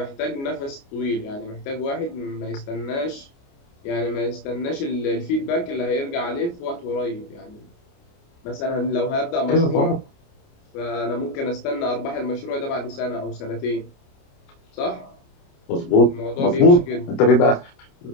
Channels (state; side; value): late; right; 29 ms